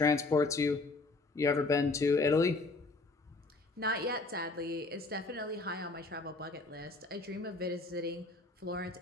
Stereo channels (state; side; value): quieter; right; 3.4 dB